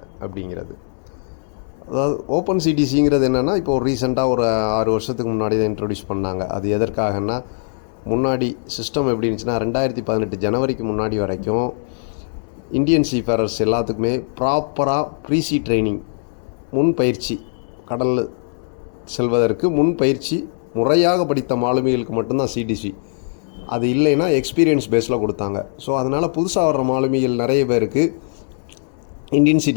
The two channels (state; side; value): silent; right; 62 dB below the other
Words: அப்படிங்கிறது. அதாவது ஓப்பன் சிடிசிங்கிறது என்னென்னா, இப்போ ரீசெண்டாக ஒரு 6 வருஷத்துக்கு முன்னாடி தான் இன்ட்ரடியூஸ் பண்ணாங்க. அது எதற்காகன்னா, முன்னாடி சிஸ்டம் எப்படி இருந்துச்சுன்னா 2018 ஜனவரிக்கு முன்னாடி வரைக்கும் இந்தியன் சீஃபேரர்ஸ் எல்லாத்துக்குமே ப்ராப்பராக ப்ரீசி ட்ரைனிங், முன் பயிற்சி, கடலில் செல்வதற்கு முன் பயிற்சி முறையாக படித்த மாலுமிகளுக்கு மட்டும்தான் சிடிசி. அது இல்லைன்னா எக்ஸ்பீரியன்ஸ் பேஸில் கொடுத்தாங்க. ஸோ அதனால் புதுசாக வர்ற மாலுமிகள் நிறைய பேருக்கு இந்தியன்